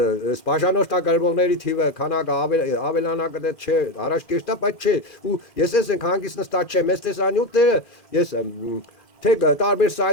բաժանորդագրվողների թիվը քանակը ավելանա կդե չէ առաջ կեշտա բայց չէ ու ես ենք հանգիստ նստած չեմ ես տեսանյութները ես թե տարբեր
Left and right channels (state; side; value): late; right; 2.4 ms